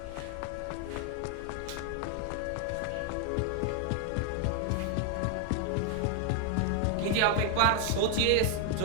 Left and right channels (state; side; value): different; both; correlation 0.01